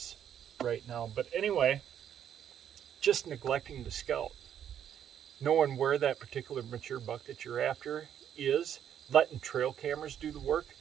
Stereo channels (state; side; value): quieter; left; 9.5 dB